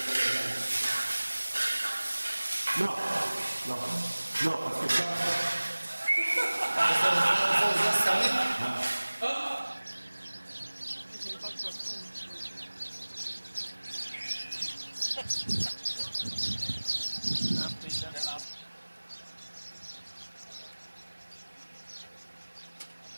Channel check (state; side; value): inverted; both; correlation -1.00